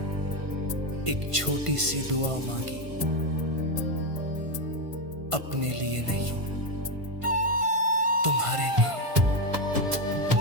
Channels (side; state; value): left; late; 1.5 ms